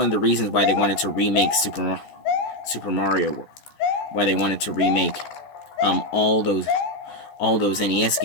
the reasons why they wanted to remake Super Mario. Why they wanted to remake all those NES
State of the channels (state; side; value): late; right; 14 ms